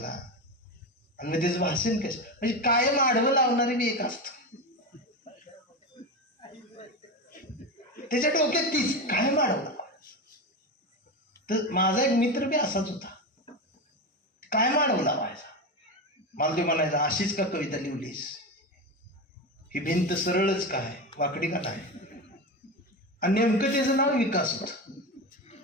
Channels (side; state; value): both; normal; correlation 0.19